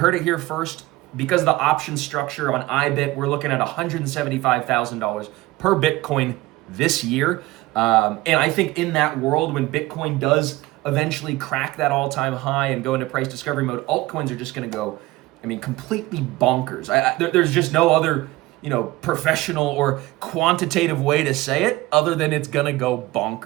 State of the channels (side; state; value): left; quieter; 19.0 dB